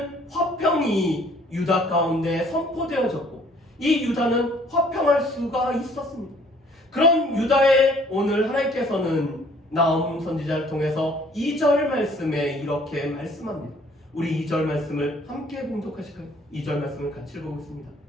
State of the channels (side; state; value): both; normal; correlation 0.58